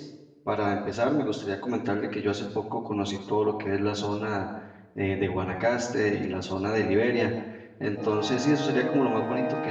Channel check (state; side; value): identical; both; correlation 1.00